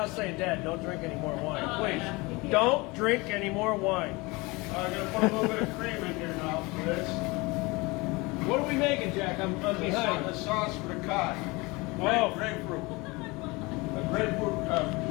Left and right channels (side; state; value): right; quieter; 24.5 dB